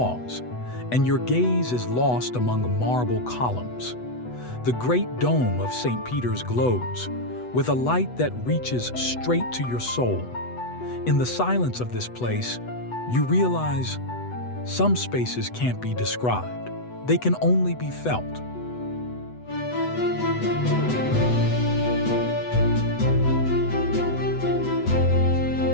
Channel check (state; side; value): late; right; 8.1 ms